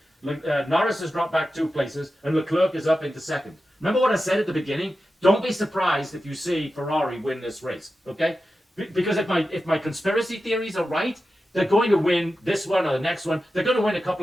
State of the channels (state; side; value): normal; both; correlation 0.92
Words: Norris has dropped back 2 places, and Leclerc is up into 2nd. Remember what I said at the beginning? Don't be surprised if you see Ferrari win this race, okay? Because if my conspiracy theories are right, they're going to win this one or the next one. They're going to win a